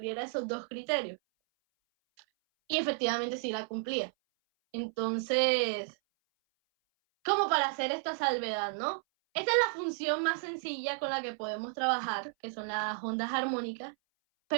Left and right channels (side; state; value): left; silent; 56 dB below the other